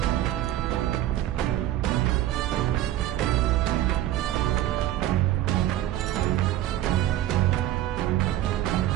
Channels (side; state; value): left; quieter; 13.4 dB